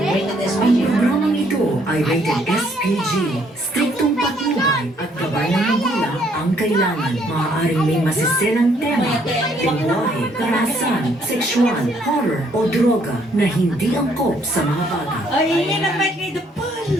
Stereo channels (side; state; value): both; normal; correlation 0.67